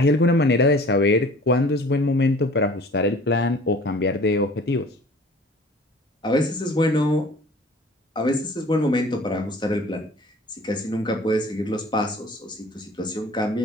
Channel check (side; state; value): both; normal; correlation 0.47